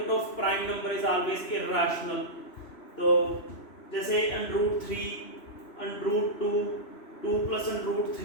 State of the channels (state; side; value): late; right; 3.0 ms